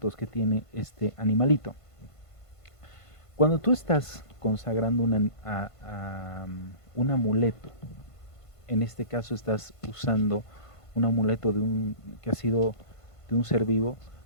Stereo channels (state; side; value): late; right; 1.5 ms